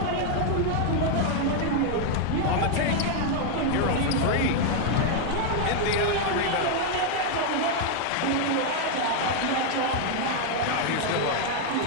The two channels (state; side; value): different; both; correlation 0.00